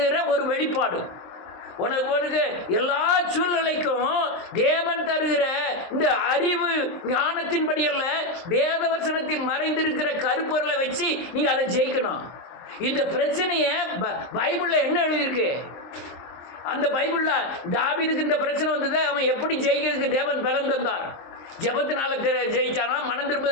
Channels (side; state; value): right; late; 23 ms